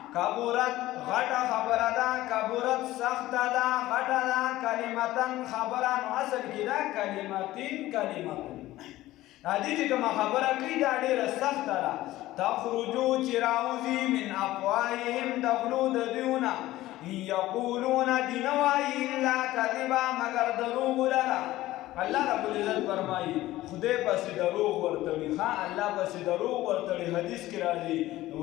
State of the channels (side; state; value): right; quieter; 16.2 dB